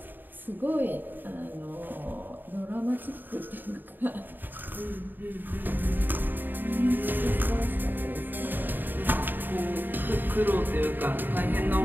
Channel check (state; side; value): late; left; 0.091 ms